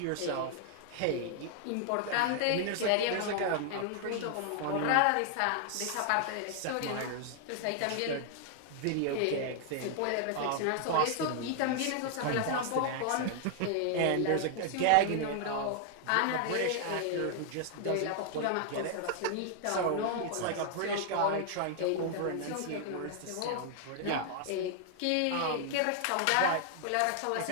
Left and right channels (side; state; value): both; different; correlation 0.00